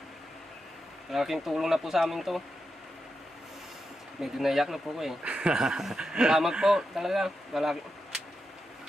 Malaking tulong na po sa amin to. Medyo naiyak na po ko eh. Salamat po talaga. Wala.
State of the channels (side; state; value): both; normal; correlation 0.87